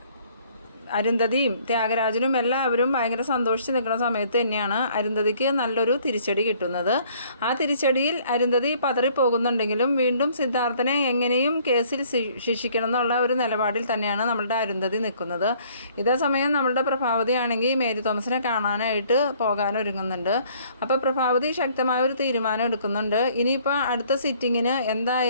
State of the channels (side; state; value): both; inverted; correlation -0.59